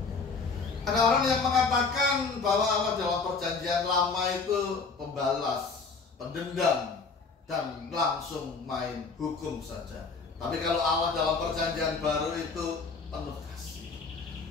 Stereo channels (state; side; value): quieter; right; 4.6 dB